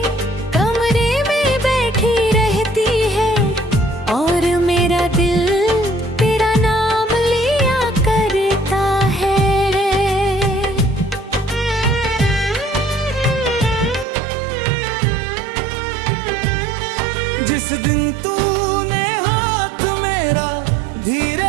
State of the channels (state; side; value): drops out; left; at 14.1 s